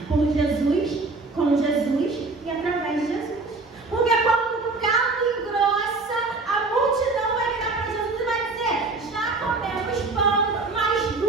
por Jesus, com Jesus e através de Jesus. Porque quando o caldo engrossa, a multidão vai virar para Jesus e vai dizer: já comemos pão, mas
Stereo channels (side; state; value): left; quieter; 3.6 dB